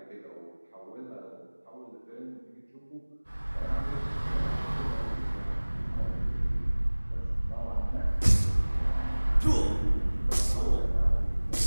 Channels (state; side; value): inverted; both; correlation -1.00